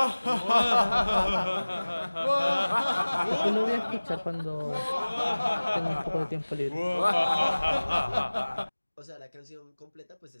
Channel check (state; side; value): inverted; both; correlation -1.00